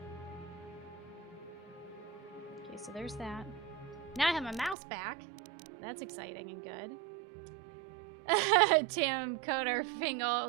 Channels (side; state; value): left; drops out; at 4.8 s